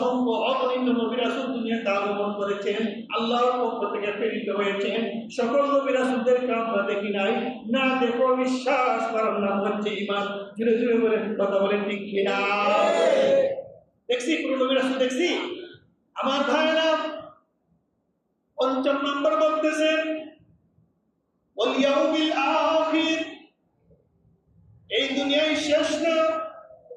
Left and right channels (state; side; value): identical; both; correlation 1.00